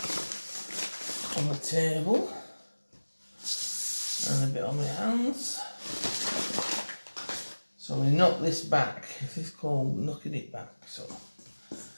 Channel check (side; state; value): both; inverted; correlation -1.00